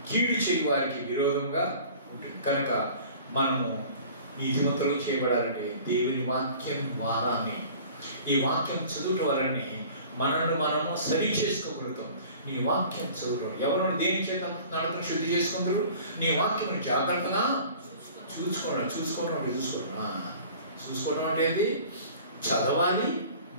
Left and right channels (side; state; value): both; inverted; correlation -0.46